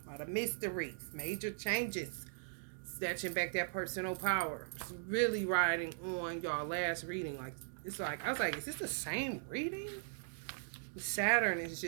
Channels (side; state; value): left; silent; digital silence